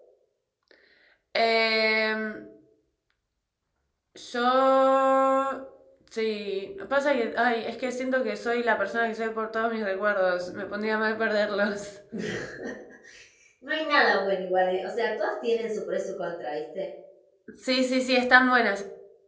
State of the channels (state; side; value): identical; both; correlation 1.00